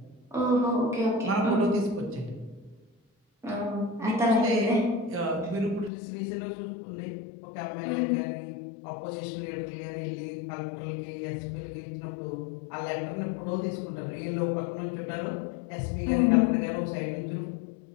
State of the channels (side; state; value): right; drops out; at 5.9 s